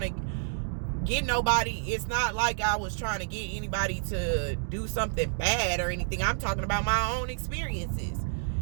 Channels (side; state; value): left; silent; digital silence